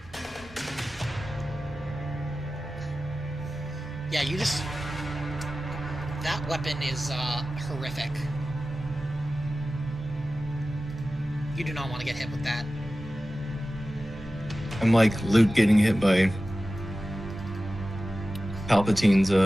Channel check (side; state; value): both; normal; correlation 0.95